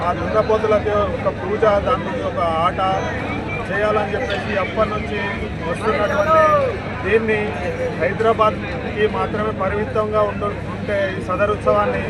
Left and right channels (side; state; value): both; identical; correlation 1.00